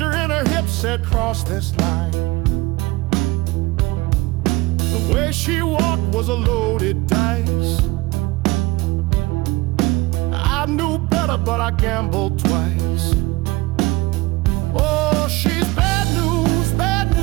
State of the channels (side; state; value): left; quieter; 21.5 dB